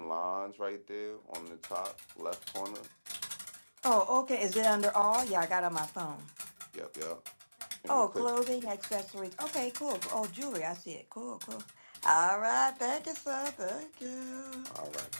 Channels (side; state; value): both; inverted; correlation -1.00